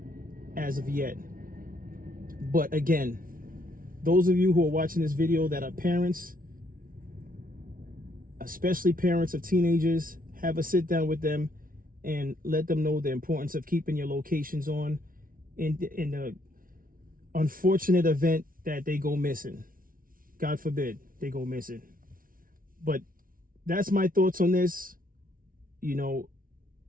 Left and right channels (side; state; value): left; late; 0.41 ms